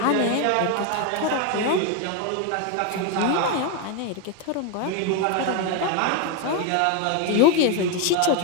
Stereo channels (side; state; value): both; different; correlation 0.02